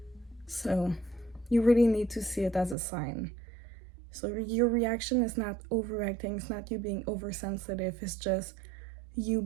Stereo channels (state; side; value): drops out; left; at 2.8 s